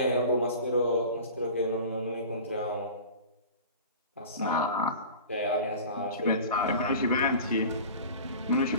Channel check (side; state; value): both; inverted; correlation -0.38